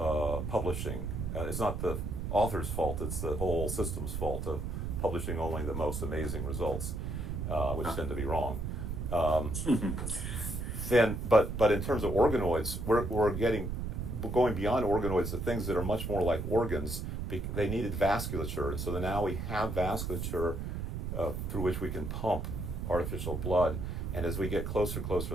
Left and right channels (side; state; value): right; noise; rumble, 3 dB below the sound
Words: publishing. It's not the author's fault, it's the whole system's fault of publishing only the most amazing results, which tend to be wrong. But in terms of organoids, we're going beyond organoids to things that are much more like organs. They needed vasculature, and so now we have vasculature through which we can pump artificial blood. And as we get closer to